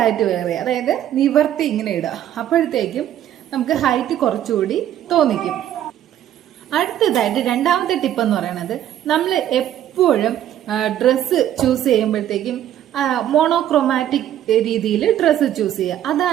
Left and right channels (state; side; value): quieter; left; 11.5 dB